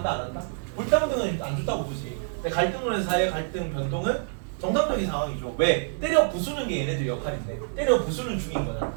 안 한다? 불평등은 안 좋다고 보지. 근데 갈등론에서 사회 갈등 변동은 정상적인 상황이죠. 왜? 때려 부수는 게 얘네들 역할인데 때려 부수는 중인 거잖아.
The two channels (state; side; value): silent; left; digital silence